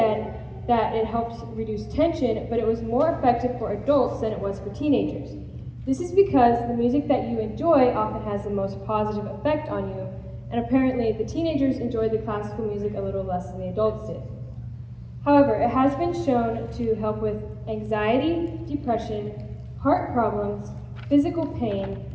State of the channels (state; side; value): identical; both; correlation 1.00